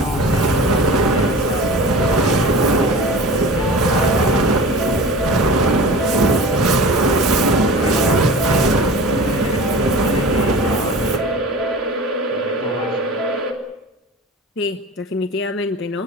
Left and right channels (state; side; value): normal; both; correlation 0.36